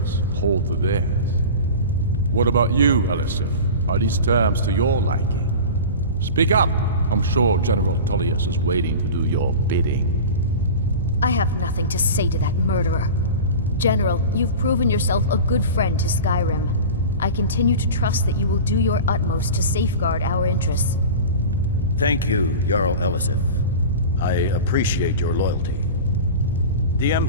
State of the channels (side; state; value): both; inverted; correlation -0.31